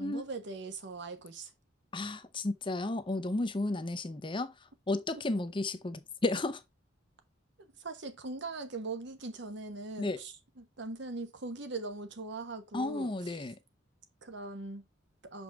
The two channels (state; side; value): normal; both; correlation 0.55